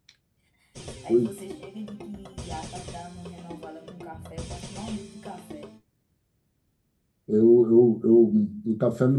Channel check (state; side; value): identical; both; correlation 1.00